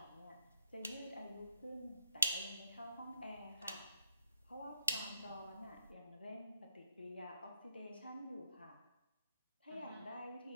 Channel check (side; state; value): both; inverted; correlation -0.77